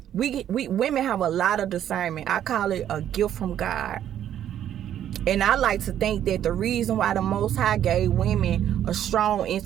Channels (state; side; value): quieter; left; 10.6 dB